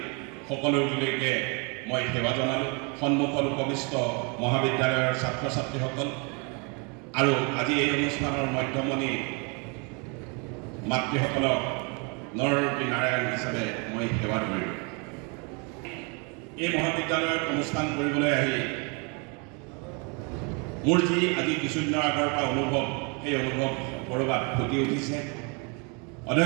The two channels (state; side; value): quieter; left; 33.3 dB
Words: সকলোলৈকে মই সেৱা জনালোঁ। সন্মুখত উপবিষ্ট মহাবিদ্যালয়ৰ ছাত্ৰ ছাত্ৰীসকল আৰু আজি এই অনুষ্ঠানৰ মধ্যমণি মাতৃসকলক নৰৰূপী নাৰায়ণ হিচাপে মই সেৱা ধৰিলোঁ। এই মহাবিদ্যালয়ত অনুষ্ঠান কৰিবলৈ আহি মোৰ যি আজি কিছুদিনৰ আগৰ পৰা অনুভৱ, সেই অনুভৱ ক'ৰবাত ফুটি উঠিছে।